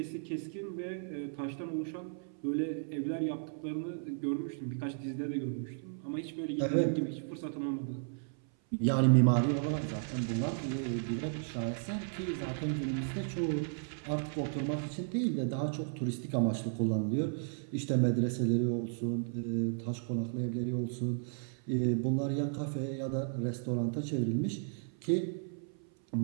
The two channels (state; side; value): silent; left; 55 dB below the other